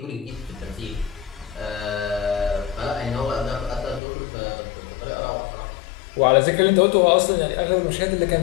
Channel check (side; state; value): right; drops out; at 4.0 s